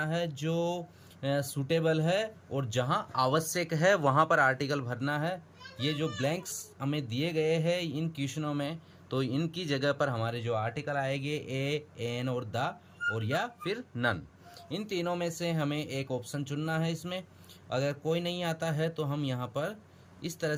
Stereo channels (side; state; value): both; identical; correlation 1.00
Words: है जो सूटेबल है और जहाँ आवश्यक है वहाँ पर आर्टिकल भरना है। ये जो ब्लैंक्स हमें दिए गए हैं इन क्वेश्चनों में, तो इनकी जगह पर हमारे जो आर्टिकल आएंगे ए, एन और द और या फिर नन, इन तीनों में से हमें एक ऑप्शन चुनना है। इसमें अगर कोई नहीं आता है तो हम यहाँ पर इस तरह